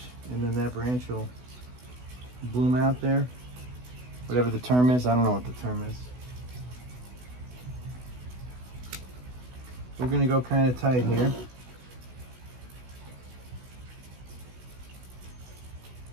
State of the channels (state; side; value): late; left; 16 ms